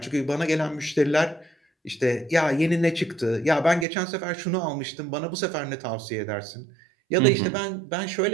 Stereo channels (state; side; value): drops out; left; at 3.9 s